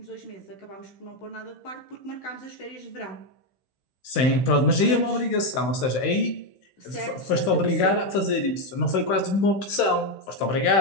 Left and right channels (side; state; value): right; late; 15 ms